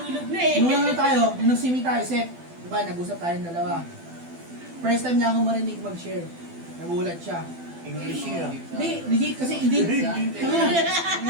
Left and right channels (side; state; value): left; late; 12 ms